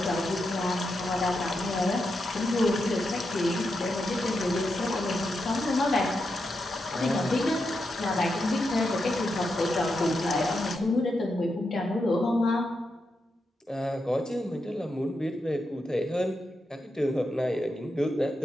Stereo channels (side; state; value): both; normal; correlation 0.86